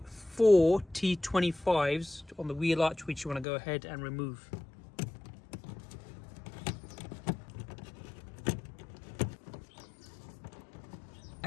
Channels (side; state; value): right; drops out; at 3.5 s